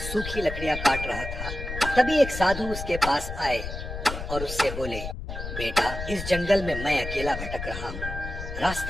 सूखी लकड़ियां काट रहा था। तभी एक साधु उसके पास आए और उससे बोले, बेटा, इस जंगल में मैं अकेला भटक रहा हूँ,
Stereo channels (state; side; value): noise; left; rumble, 7 dB below the sound